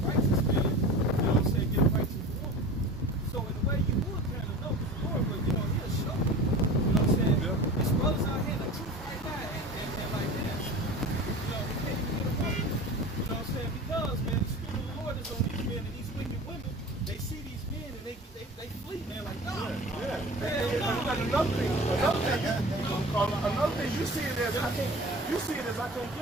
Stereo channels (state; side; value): normal; both; correlation 0.37